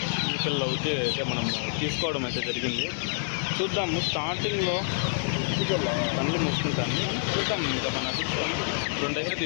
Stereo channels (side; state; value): right; silent; 60 dB below the other